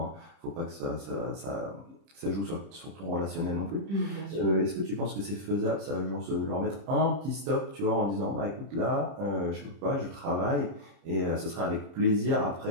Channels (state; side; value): late; left; 30 ms